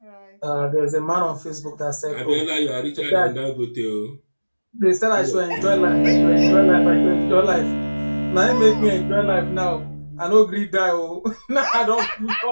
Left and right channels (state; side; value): inverted; both; correlation -1.00